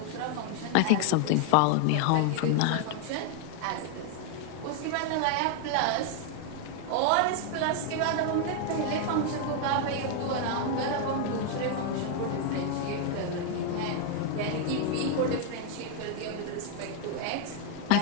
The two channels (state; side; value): different; both; correlation 0.01